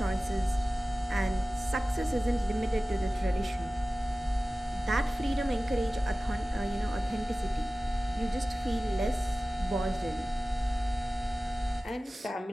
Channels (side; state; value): both; normal; correlation 0.97